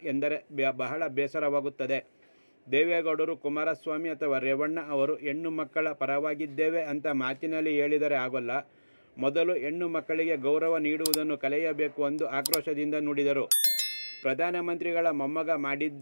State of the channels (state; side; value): inverted; both; correlation -0.99